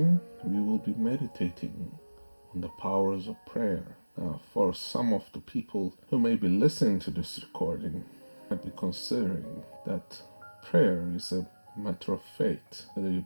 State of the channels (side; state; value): both; inverted; correlation -1.00